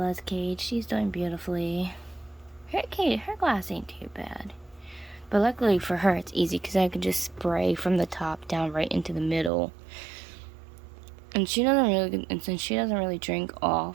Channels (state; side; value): drops out; left; at 9.5 s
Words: cage. She's doing beautifully. Her glass ain't too bad. But luckily for her, it's easy because I can just spray from the top down right into the middle. And since she doesn't really drink